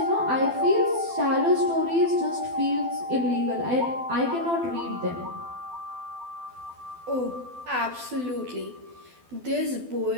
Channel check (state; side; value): late; left; 12 ms